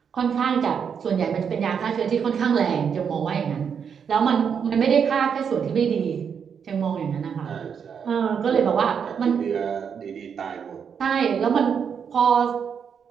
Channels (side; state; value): left; quieter; 7.1 dB